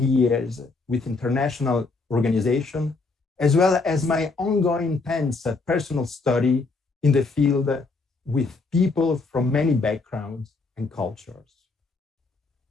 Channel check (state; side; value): quieter; right; 3.9 dB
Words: years with international organizations, as well as my ongoing intense personal study in the field with people from many backgrounds and cultures.